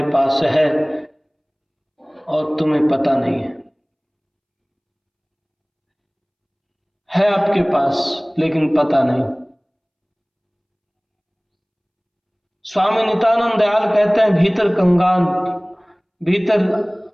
पास है और तुम्हें पता नहीं है आपके पास लेकिन पता नहीं। स्वामी नित्यानंद दयाल कहते हैं, भीतर कंगाल, भीतर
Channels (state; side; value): identical; both; correlation 1.00